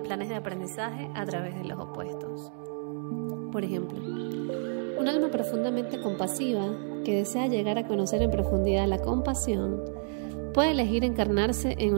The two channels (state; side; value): silent; left; 58 dB below the other